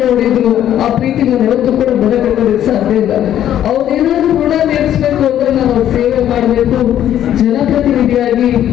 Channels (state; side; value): quieter; right; 11.1 dB